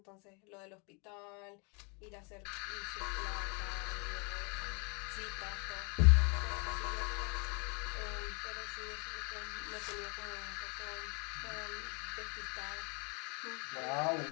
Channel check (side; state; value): right; quieter; 32.9 dB